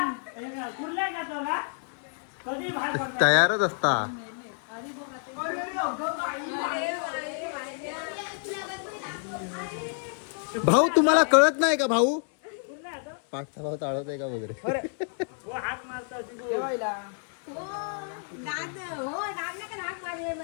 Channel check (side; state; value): right; silent; 59 dB below the other